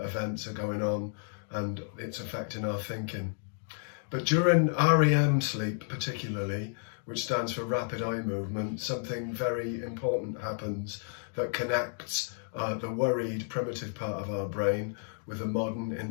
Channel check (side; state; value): right; silent; digital silence